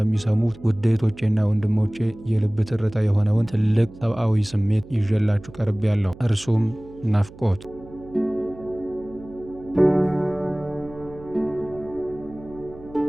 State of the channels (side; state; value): right; noise; hum, 19 dB below the sound